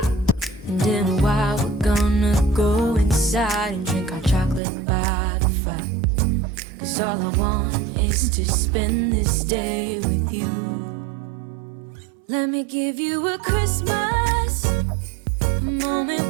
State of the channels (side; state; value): left; drops out; at 4.6 s